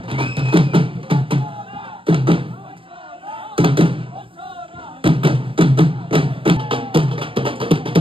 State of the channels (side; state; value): left; late; 0.25 ms